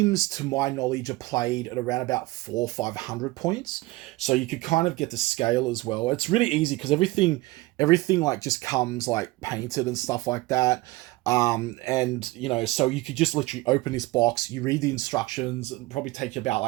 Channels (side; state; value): left; quieter; 20.4 dB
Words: to my knowledge, are played at around about 400 or 500 points. So you could kind of get the scale as well. It's really easy because everything like just comes like painted and stuff like that. So you could just literally open this box, you read the instructions, and probably take you about